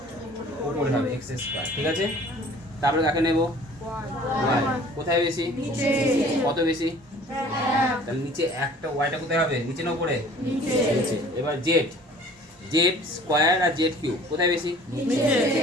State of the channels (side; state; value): both; normal; correlation 0.50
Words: উপরে হবে, x²। ঠিক আছে? তারপরে কাকে নেব? y। কোথায় বেশি? কত বেশি? তাহলে নিচে একটা, ওয়াইটা কোথায় হবে? নিচে না উপরে? নিচে। এবার z² আর z³ কোথায় বেশি?